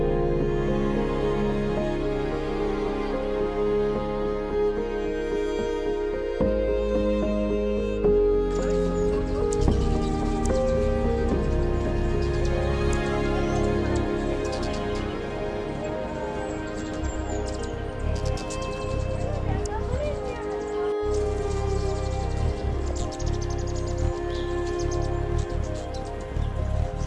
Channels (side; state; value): both; identical; correlation 1.00